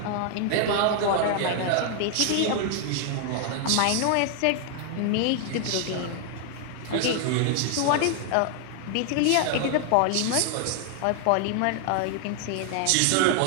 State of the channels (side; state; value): both; different; correlation 0.00